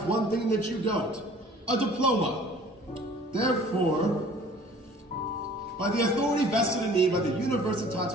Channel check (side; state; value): both; normal; correlation 0.50